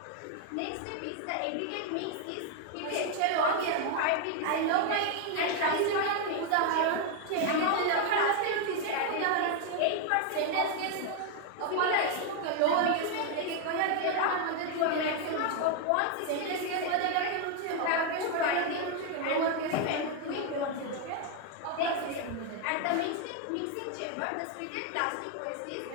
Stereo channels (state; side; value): different; both; correlation 0.01